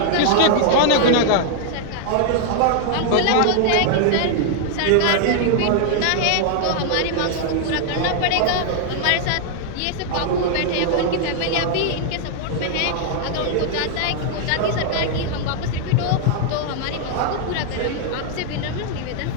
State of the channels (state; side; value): different; both; correlation 0.00